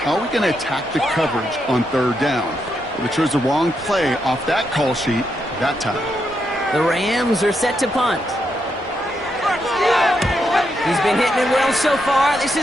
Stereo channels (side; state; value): both; normal; correlation 0.81